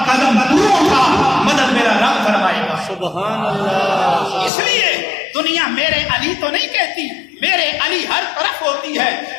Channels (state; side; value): drops out; right; at 4.5 s